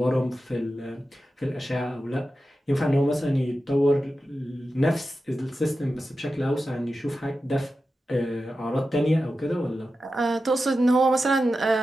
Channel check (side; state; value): both; normal; correlation 0.92